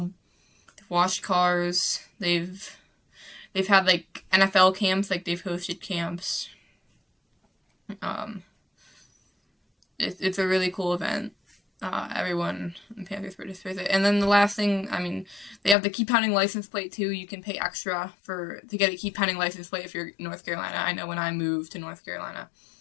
they've washed cars, they've had, like, NFL camps, like, they've hosted camps. It's a really cool event. Everyone in Panthers participates. And then the last thing, I mean, they have the Keep Pounding license plate too. You can pay extra to get a Keep Pounding license plate if you're in North Carolina. I know when I moved to North Carolina,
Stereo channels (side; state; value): right; drops out; at 15.8 s